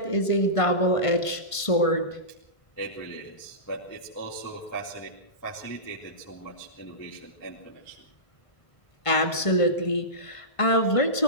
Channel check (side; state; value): right; late; 1.5 ms